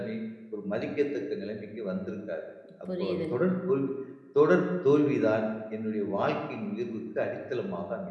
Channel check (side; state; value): both; identical; correlation 1.00